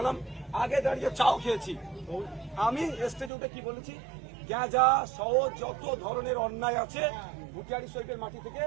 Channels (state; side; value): drops out; left; at 3.3 s